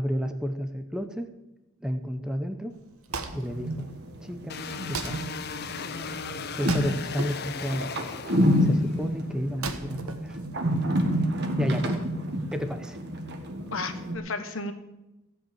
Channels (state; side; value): normal; both; correlation 0.69